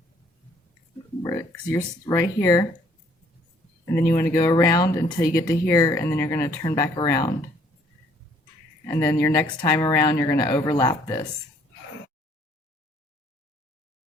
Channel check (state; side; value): normal; both; correlation 0.62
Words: because you're right here. And then you want to go around until you get to here, and then you're going to turn back around. And then your next time around, you're going to overlap this.